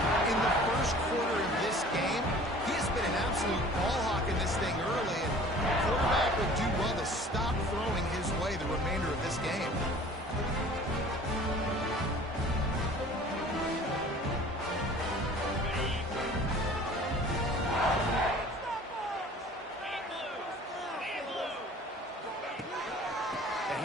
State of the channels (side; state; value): both; normal; correlation 0.47